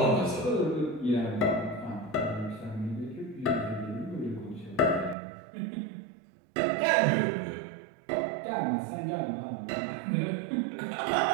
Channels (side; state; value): left; drops out; at 5.2 s